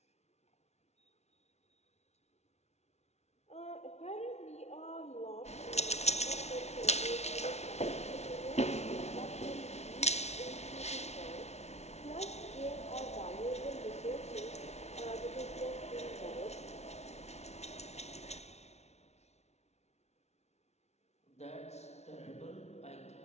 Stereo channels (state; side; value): late; right; 0.31 ms